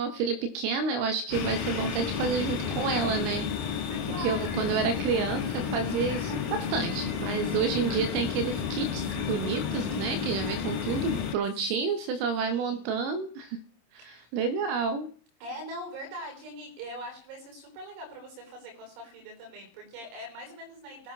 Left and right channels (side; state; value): left; late; 26 ms